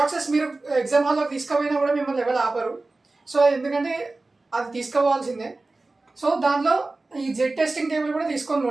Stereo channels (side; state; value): left; quieter; 3.3 dB